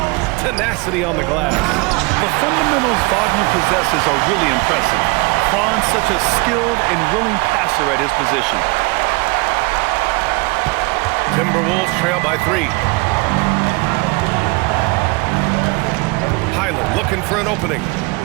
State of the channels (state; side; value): quieter; left; 26.8 dB